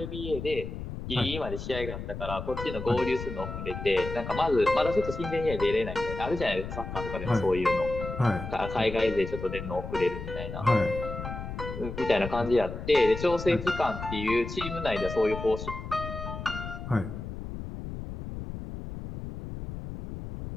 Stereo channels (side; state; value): left; noise; rumble, 8 dB below the sound